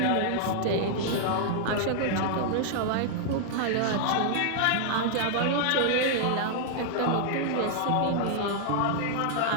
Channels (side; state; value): both; different; correlation -0.01